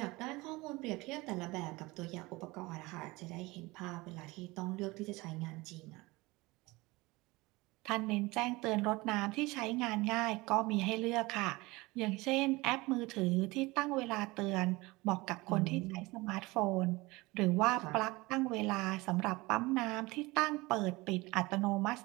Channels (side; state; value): left; quieter; 22.3 dB